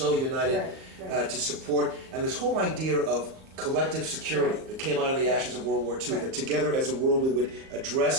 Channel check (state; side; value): late; left; 38 ms